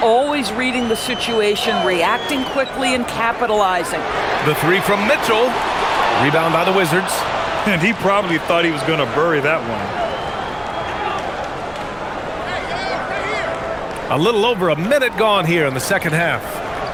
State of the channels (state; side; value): noise; right; hum, 26 dB below the sound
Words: always reading the situation, reacting quickly, and capitalizing. The 3 from Mitchell. Rebound by the Wizards. And he probably thought he was going to bury that one. A little over a minute gone here in the second half.